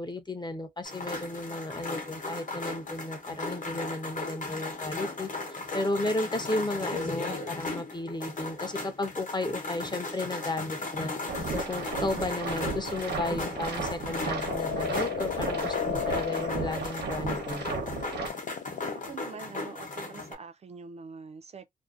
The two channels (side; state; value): both; normal; correlation 0.40